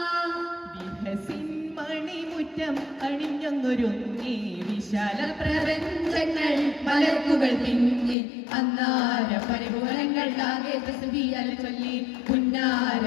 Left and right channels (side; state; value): right; drops out; at 8.2 s